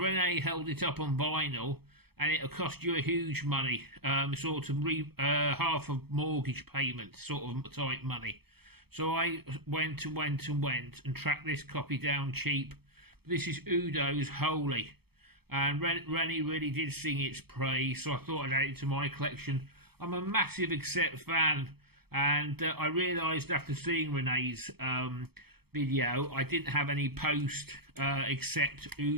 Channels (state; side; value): late; left; 0.96 ms